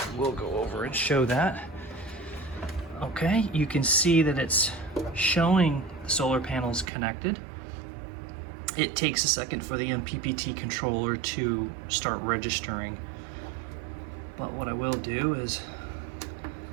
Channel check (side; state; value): left; drops out; at 6.9 s